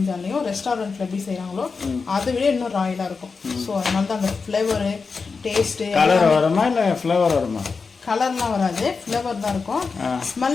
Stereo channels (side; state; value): right; quieter; 4.8 dB